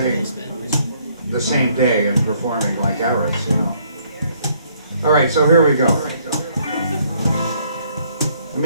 the same day and performing like Eris, you know. All right, so here we go. It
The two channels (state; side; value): inverted; both; correlation -0.66